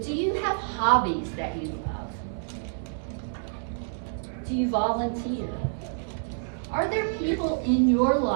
do you have hobbies that you love? Do you volunteer? Are there people in your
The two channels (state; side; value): silent; left; 60 dB below the other